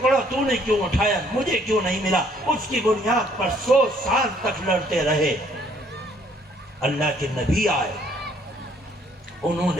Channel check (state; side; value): normal; both; correlation 0.64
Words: تو نے کیوں اٹھایا، مجھے کیوں نہیں ملا، اس کی بنیاد پر 100 سال تک لڑتے رہے۔ اللہ کے نبی آئے، انہوں